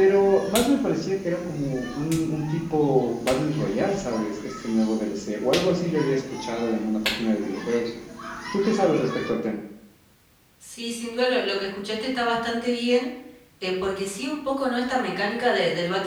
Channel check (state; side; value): identical; both; correlation 1.00